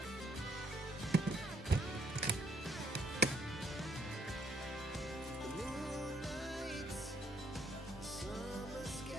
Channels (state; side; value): normal; both; correlation 0.68